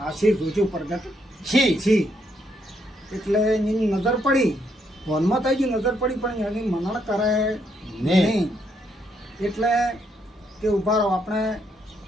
આશીર જોજો પ્રગટ છી. એટલે એની નજર પડી, વનમાં થઈ ગઈ નજર પડી, પણ એની મનણ કરે નહીં. એટલે કે ઉભા રહો, આપણે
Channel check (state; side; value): normal; both; correlation 0.75